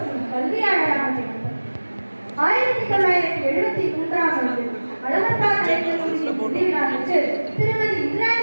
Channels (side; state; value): both; inverted; correlation -1.00